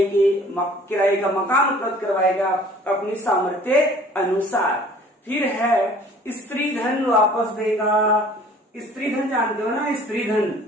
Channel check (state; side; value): normal; both; correlation 0.51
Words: का मकान उपलब्ध करवाएगा अपनी सामर्थ्य अनुसार। फिर है स्त्री धन वापस देगा। स्त्री धन जानते हो ना, स्त्री धन